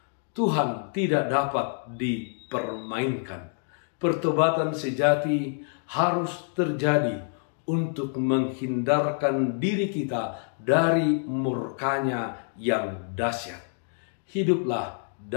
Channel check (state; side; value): silent; right; 60 dB below the other